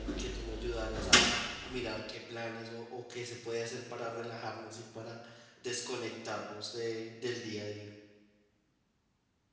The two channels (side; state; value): both; identical; correlation 1.00